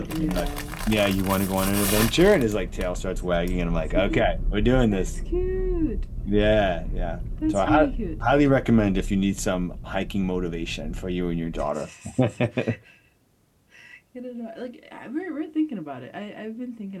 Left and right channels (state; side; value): identical; both; correlation 1.00